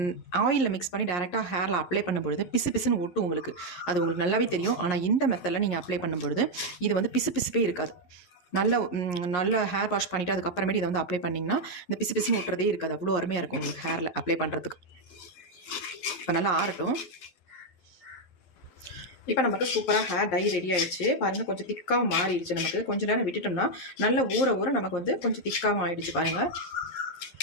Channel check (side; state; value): right; late; 11 ms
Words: ஆயிலில் மிக்ஸ் பண்ணி டேரெக்டாக ஹேரில் அப்ளை பண்ணும்பொழுது பிசு பிசுன்னு ஒட்டும் உங்களுக்கு. அது உங்களுக்கு நல்லாவே தெரியும். ஆனால் இந்த மெத்தடில் நீங்கள் அப்ளை பண்ணும்பொழுது இது வந்து பிசு பிசுப்பே இருக்காது. நல்ல ஹேர் வாஷ் பண்ணிவிட்டு அதுக்கப்புறமேட்டு இதை வந்து அப்ளை பண்ணிங்கன்னா இந்த பிசு பிசுன்னு ஒட்டுறதே இருக்காது. அவ்வளோ அருமையாக இருக்கும் உங்களுக்கு ஹேரில் அப்ளை பண்ணுறதுக்கு. இப்போ நல்லா ஆறட்டும். இப்போ நமக்கு சூப்பராக ஹேர் டை ரெடி ஆகிடுச்சு. பாருங்கள் கொஞ்சம் திக்காகவும் மாறிடுச்சு. நமக்கு கொஞ்சம் நேரம் விட்டுட்டோம்னா நல்ல ஊற நமக்கு வந்து கொஞ்சம் திக்காகவும் ஆகிடுச்சு. பாருங்கள்